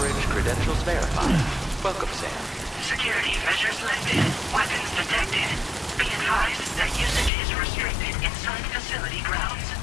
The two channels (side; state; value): right; drops out; at 7.3 s